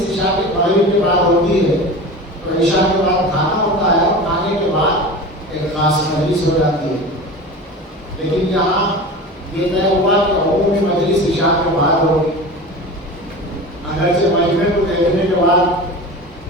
عشاء کے بعد ہوگی. اگرچہ مجمع کو دیکھنے کے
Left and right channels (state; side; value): normal; both; correlation 0.32